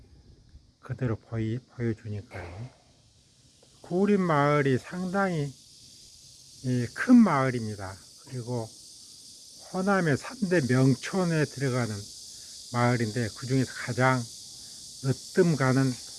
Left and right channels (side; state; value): both; identical; correlation 1.00